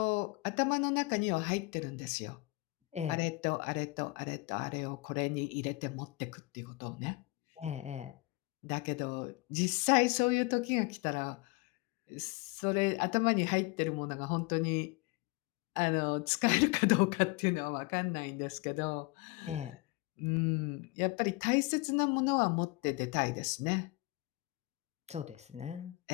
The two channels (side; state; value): right; quieter; 23.1 dB